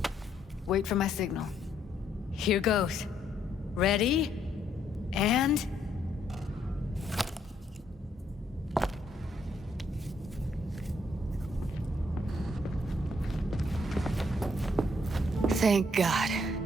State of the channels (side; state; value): both; normal; correlation 0.71